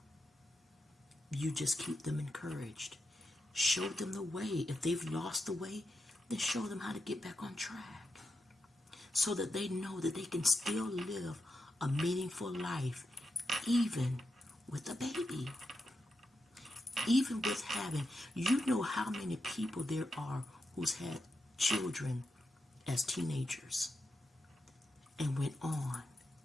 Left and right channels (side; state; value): both; normal; correlation 0.86